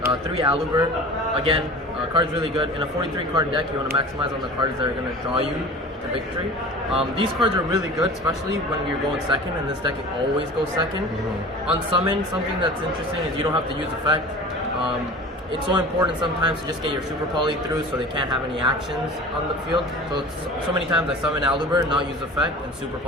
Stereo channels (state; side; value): normal; both; correlation 0.39